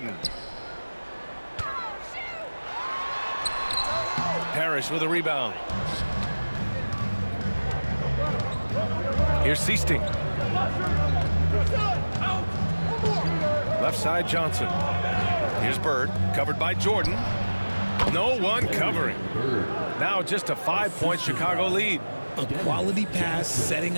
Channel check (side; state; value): both; inverted; correlation -1.00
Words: Parrish with a rebound. Here's Seasting. Left side Johnson. Here's Bird, covered by Jordan. No one covering. Now just a 5-point Chicago lead. A quality pass, setting